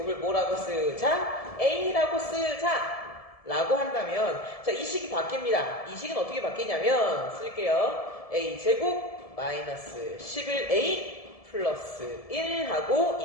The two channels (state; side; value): late; right; 1.7 ms